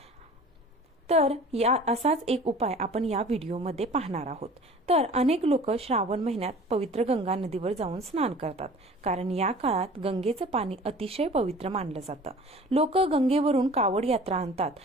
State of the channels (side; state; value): both; normal; correlation 0.44